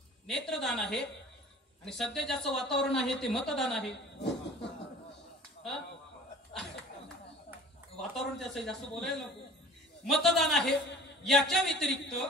नेत्रदान आहे आणि सध्या ज्याचं वातावरण आहे ते मतदान आहे. वातावरण त्याचं जास्त बोलायला नको. मतदान आहे. याच्या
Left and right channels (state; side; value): normal; both; correlation 0.46